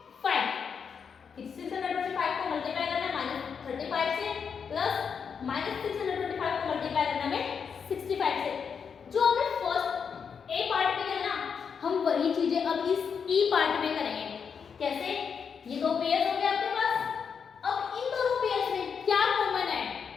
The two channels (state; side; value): quieter; right; 6.5 dB